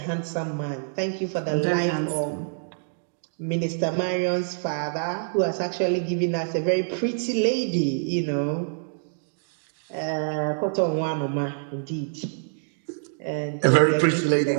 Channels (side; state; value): left; silent; digital silence